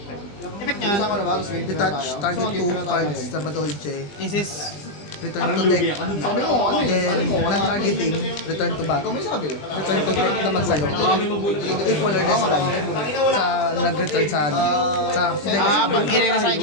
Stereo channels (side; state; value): right; late; 20 ms